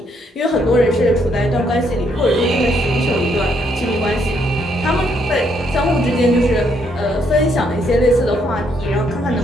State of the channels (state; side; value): normal; both; correlation 0.72